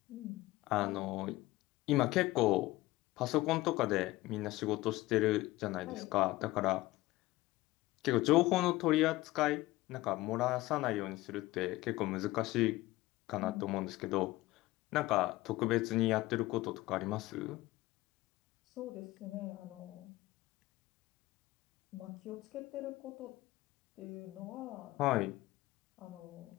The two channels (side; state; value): right; quieter; 18.4 dB